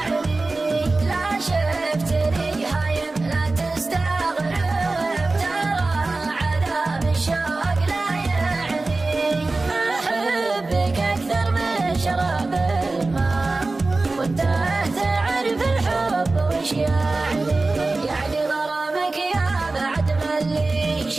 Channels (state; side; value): quieter; left; 3.3 dB